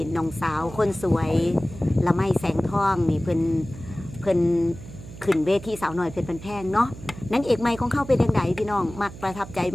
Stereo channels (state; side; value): noise; right; hum, 15 dB below the sound